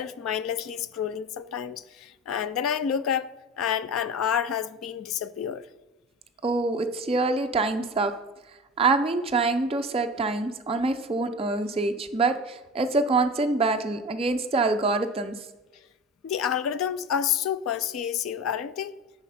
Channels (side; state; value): both; normal; correlation 0.31